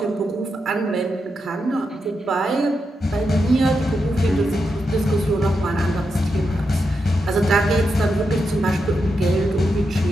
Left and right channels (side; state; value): both; normal; correlation 0.85